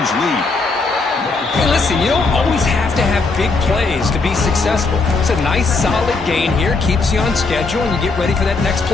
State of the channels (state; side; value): quieter; right; 3.9 dB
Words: lead. Hey, listen, you don't always have to have big plays to be successful. It's a nice, solid gain here. Keeps you on schedule, and you get ready for that next